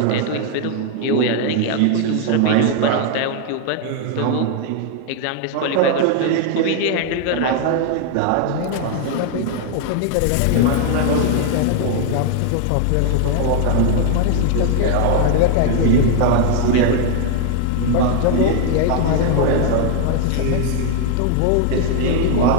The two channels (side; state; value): both; different; correlation 0.00